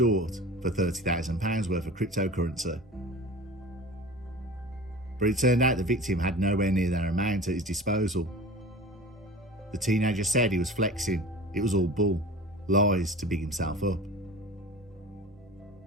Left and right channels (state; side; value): normal; both; correlation 0.37